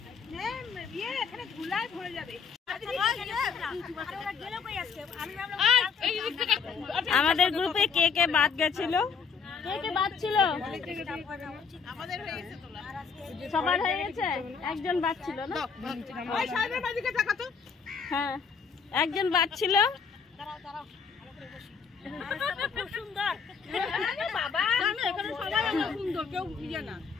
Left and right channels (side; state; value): right; quieter; 5.8 dB